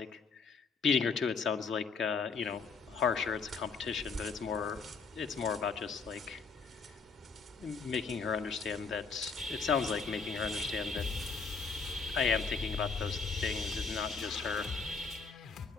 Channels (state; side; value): quieter; right; 4.9 dB